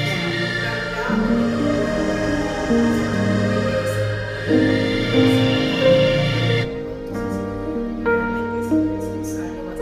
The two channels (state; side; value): identical; both; correlation 1.00